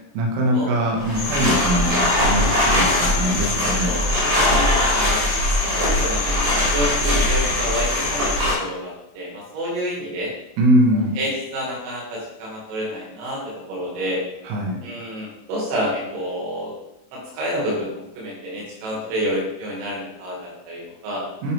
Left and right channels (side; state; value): left; late; 28 ms